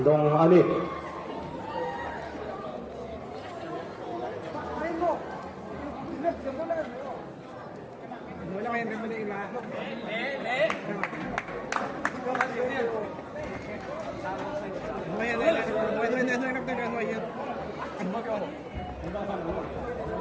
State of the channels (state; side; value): identical; both; correlation 1.00